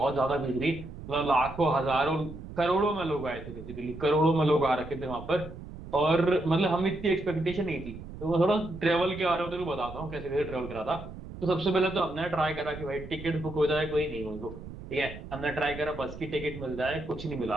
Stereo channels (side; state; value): right; noise; rumble, 13 dB below the sound